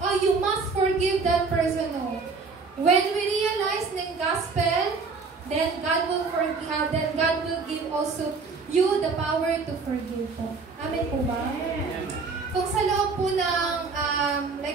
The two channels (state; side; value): quieter; left; 4.5 dB